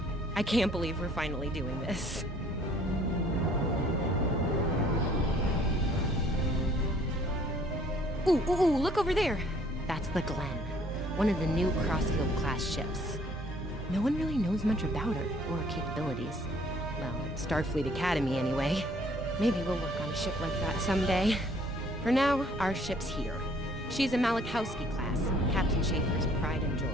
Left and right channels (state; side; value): normal; both; correlation 0.59